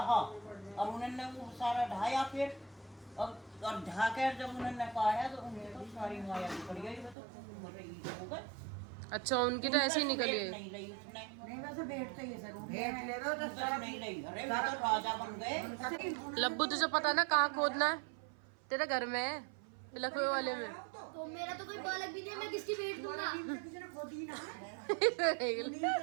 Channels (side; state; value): left; drops out; at 7.2 s